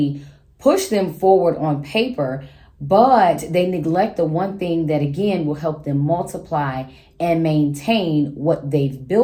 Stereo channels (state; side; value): identical; both; correlation 1.00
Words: push them forward on paper, but they neglect the one thing that, again, will help them multiply and maintain what they've